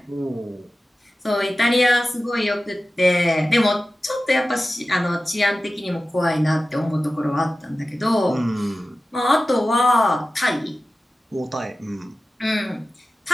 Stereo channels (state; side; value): normal; both; correlation 0.95